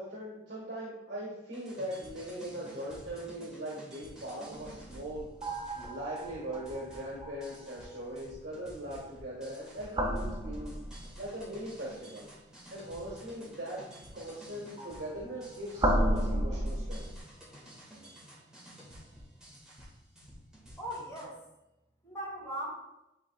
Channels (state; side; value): normal; both; correlation 0.50